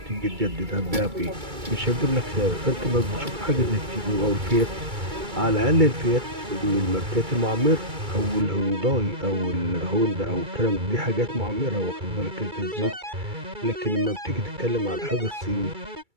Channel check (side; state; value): left; late; 2.3 ms